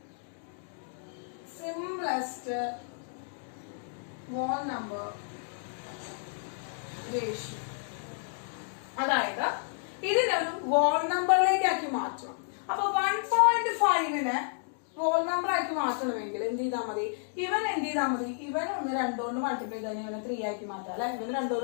സിംപ്ലസ്റ്റ് വോൾ നമ്പർ റേഷ്യോ, അതായത് ഇതിനൊരു വോൾ നമ്പറിലേക്കാക്കി മാറ്റണം. അപ്പൊ 1.5നെ വോൾ നമ്പർ ആക്കി മാറ്റണമെങ്കിൽ എന്ത് ചെയ്താൽ മതി? ഇവൻ എന്ത് ചെയ്താൽ മതി? ഇവൻ 2 കൊണ്ട് മൾട്ടിപ്ലൈ ചെയ്ത് ഇവനെ 3 ആക്കി മാറ്റാം അല്ലെ? ഇവന് 2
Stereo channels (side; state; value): right; silent; digital silence